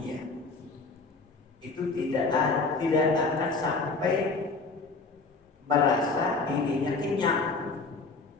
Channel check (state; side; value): quieter; right; 4.0 dB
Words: Itu tidak akan sampai merasa dirinya kenyang,